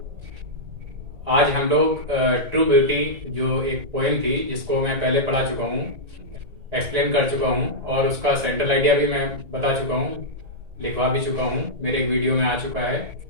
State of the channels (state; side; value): late; left; 1.9 ms